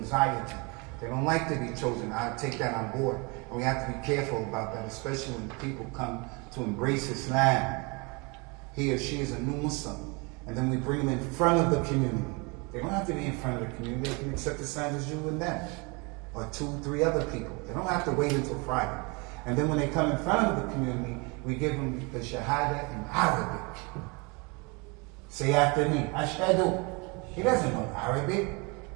They don't like to be chosen. I take that on board. And we have to be careful about that, especially when people come to embrace Islam. He or she is a new Muslim. And then we bring them in front of the community. They don't have to be in front of the community. They can accept Islam as you and them. Or 2, 3 other people. They don't have to wait until Friday. And then when they come in front of the community, we give them the Shahada in Arabic. Say after me, Ashhadu. He doesn't know Arabic.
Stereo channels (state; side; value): quieter; left; 29.5 dB